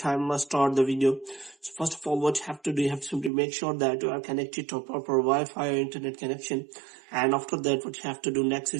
let's start the video. So first of all, what you have to do, you have to simply make sure that you are connected to a proper Wi-Fi or internet connection. And after that, what you have to do next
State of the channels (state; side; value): drops out; left; at 3.3 s